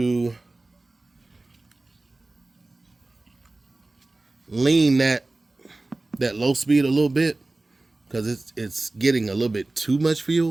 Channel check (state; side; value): quieter; left; 3.0 dB